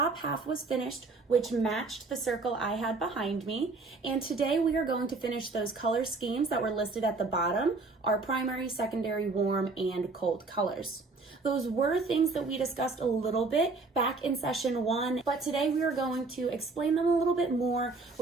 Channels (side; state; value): left; quieter; 3.8 dB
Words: half was finished, which matched the circle I had behind me. And today we are going to finish those color schemes that were listed at the bottom, our primary, secondary, warm, and cold colors. Those were things that we discussed a little bit back in session 1, but today we are going to explain them a little bit more.